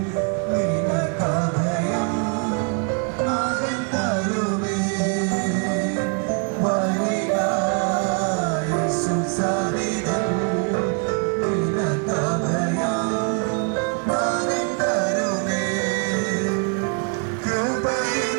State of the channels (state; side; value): quieter; left; 38.5 dB